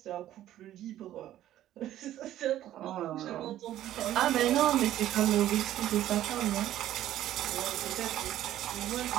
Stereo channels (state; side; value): quieter; left; 12.9 dB